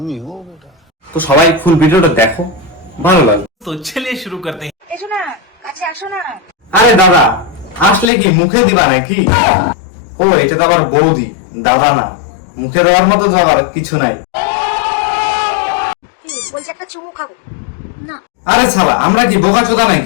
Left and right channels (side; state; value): right; drops out; at 8.1 s